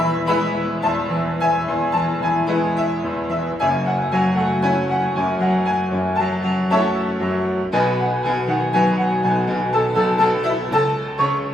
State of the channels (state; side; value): normal; both; correlation 0.81